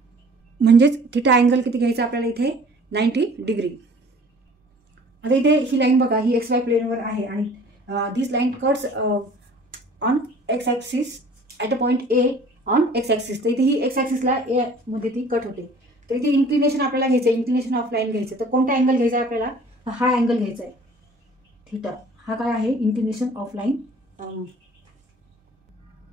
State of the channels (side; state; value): both; normal; correlation 0.50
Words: म्हणजेच थिटा अँगल किती घ्यायचा आपल्याला इथे, 90 डिग्री. आता इथे ही लाईन बघा, ही एक्स वाय प्लेनवर आहे आणि this line cuts on x axis at a point A on x axis. तर इथे ही एक्स ॲक्सिसला ए मध्ये ती कट होते. तर इथे इन्क्लिनेशन आपल्याला घ्यायचं आहे, इन्क्लिनेशन ऑफ लाईन घ्यायचं. तर कोणता अँगल घ्यायचा आहे आपल्याला, हा अँगल घ्यायचा आहे थीटा. हा काय आहे, इंक्लिनेशन ऑफ लाईन.